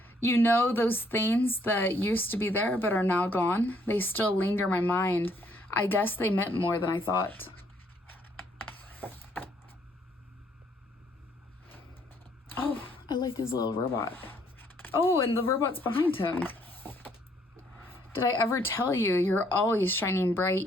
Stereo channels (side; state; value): both; normal; correlation 0.67